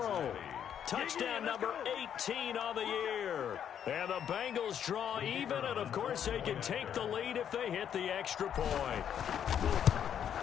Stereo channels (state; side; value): quieter; right; 9.0 dB